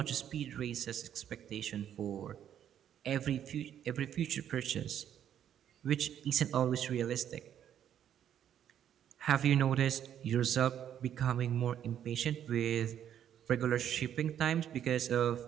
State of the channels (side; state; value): left; quieter; 9.9 dB